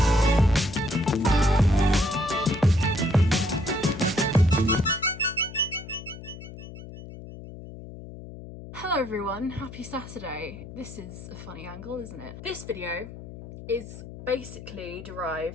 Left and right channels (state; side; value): noise; left; hum, 13 dB below the sound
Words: Hello everyone, happy Saturday. This is a funny angle, isn't it? This video is basically